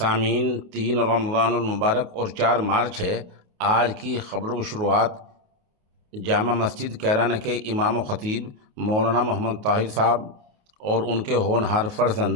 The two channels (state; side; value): late; left; 28 ms